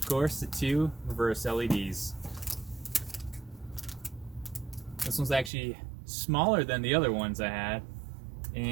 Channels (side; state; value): left; drops out; at 5.5 s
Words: course, the two reverse LEDs. This one's actually smaller than the other ones I had,